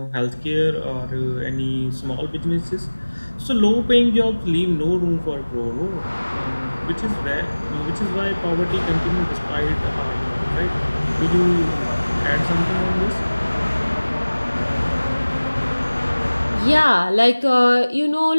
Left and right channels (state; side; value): inverted; both; correlation -1.00